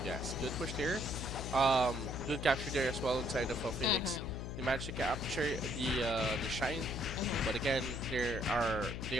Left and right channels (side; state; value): left; noise; hum, 5 dB below the sound